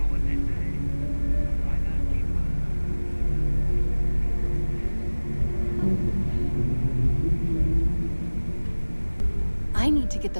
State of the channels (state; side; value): inverted; both; correlation -1.00